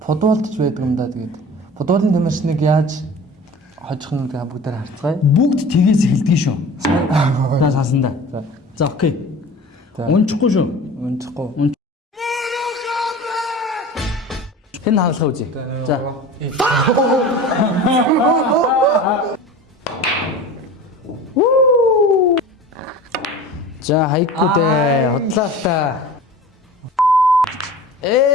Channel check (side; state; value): both; normal; correlation 0.38